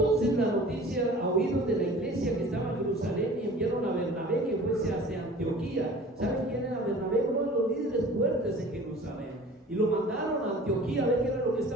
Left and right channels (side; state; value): both; normal; correlation 0.44